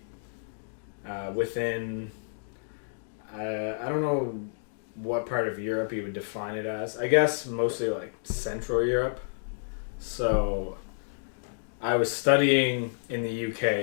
within. I don't know what part of Europe you would define it as. I guess mostly like Central Europe. So I was studying in the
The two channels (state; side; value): silent; right; digital silence